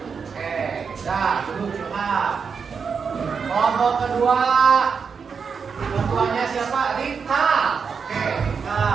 kedua, ketuanya siapa? Rika. Oke, Rika.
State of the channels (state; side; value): quieter; left; 5.9 dB